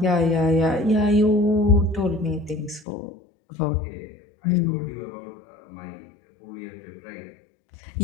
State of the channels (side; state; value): right; drops out; at 2.9 s